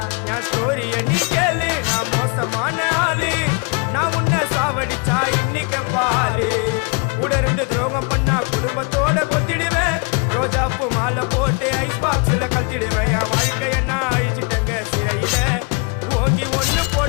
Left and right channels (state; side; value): quieter; right; 32.3 dB